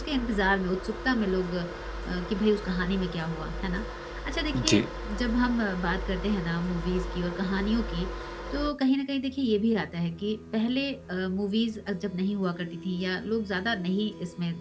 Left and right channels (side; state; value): both; identical; correlation 1.00